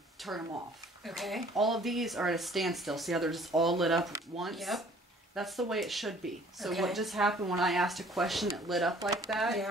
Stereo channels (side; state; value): both; normal; correlation 0.55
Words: turn them off. Okay. All of these are at a standstill. See how they're just all lit up once? Yep. That's the way it should be. So what just happened when I asked a question, it lit up like that?